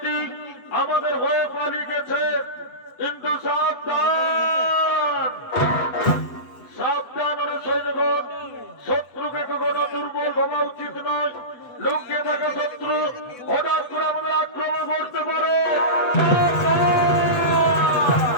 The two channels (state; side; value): late; right; 8.1 ms